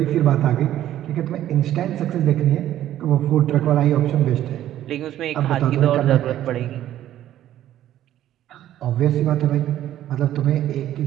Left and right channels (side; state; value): left; quieter; 12.4 dB